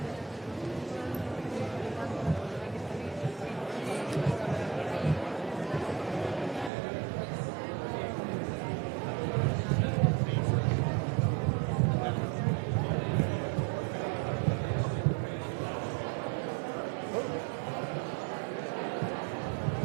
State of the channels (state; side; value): drops out; left; at 6.7 s